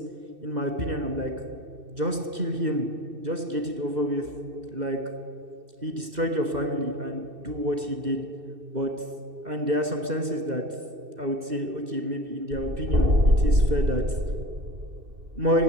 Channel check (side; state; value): left; late; 2.6 ms